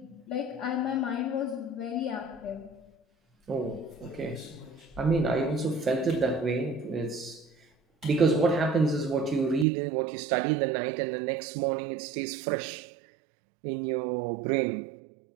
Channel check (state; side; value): drops out; left; at 9.7 s